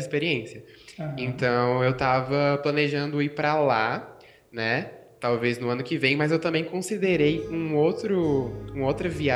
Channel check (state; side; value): identical; both; correlation 1.00